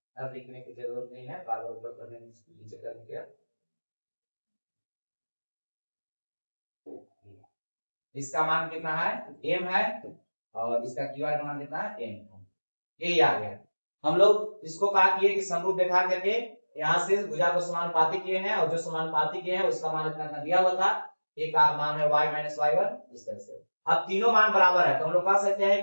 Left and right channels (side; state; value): both; inverted; correlation -1.00